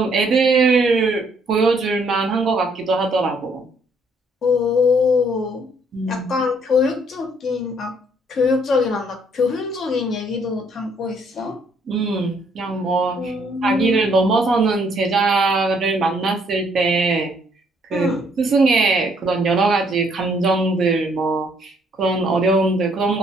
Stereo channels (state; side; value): normal; both; correlation 0.67